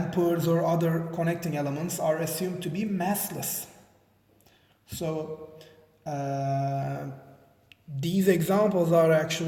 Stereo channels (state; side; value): identical; both; correlation 1.00